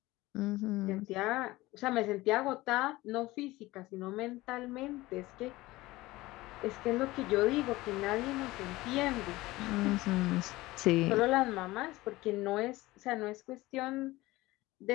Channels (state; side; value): quieter; right; 19.1 dB